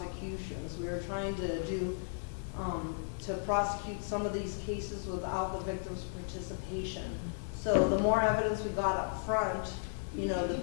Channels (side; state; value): right; silent; digital silence